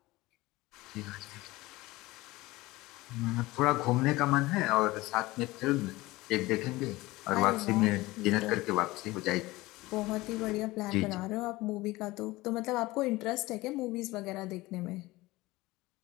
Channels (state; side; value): quieter; right; 19.8 dB